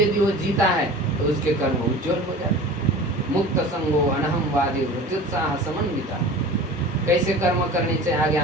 वो जीता है तो उसके कर्म उज्जवल हो जाते। मुक्त संगो अनहमवादी वृत्युत्साह समन्विता। कैसे कर्म करने चाहिए आगे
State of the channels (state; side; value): normal; both; correlation 0.38